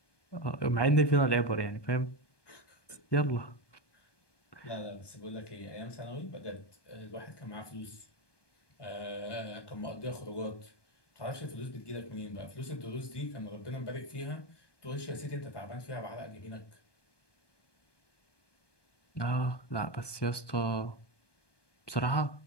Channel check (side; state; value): right; late; 1.2 ms